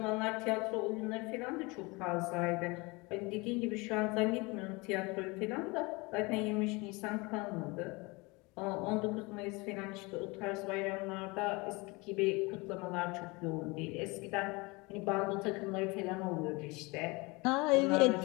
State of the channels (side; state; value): right; quieter; 25.7 dB